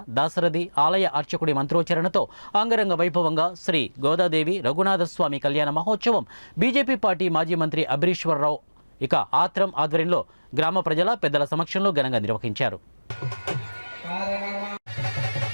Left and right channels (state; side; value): inverted; both; correlation -1.00